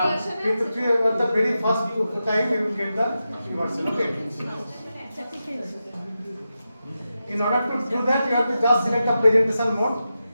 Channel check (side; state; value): both; inverted; correlation -0.90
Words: At the very first time you will get the free version. Okay. In order to do that, you have to just select the presentation mode.